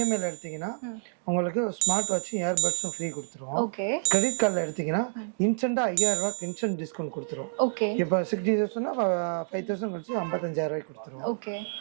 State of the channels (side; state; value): left; silent; digital silence